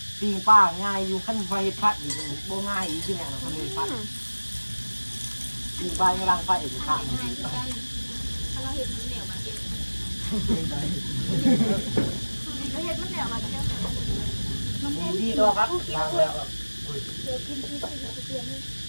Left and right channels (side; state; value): both; inverted; correlation -1.00